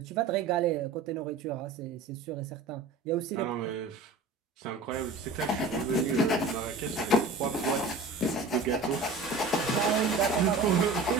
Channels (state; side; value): quieter; left; 3.5 dB